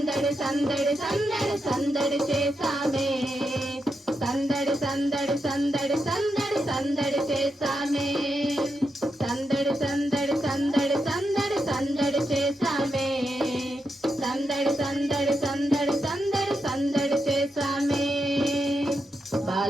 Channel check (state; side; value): normal; both; correlation 0.85